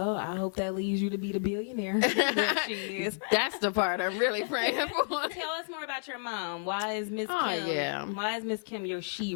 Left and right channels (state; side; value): silent; right; digital silence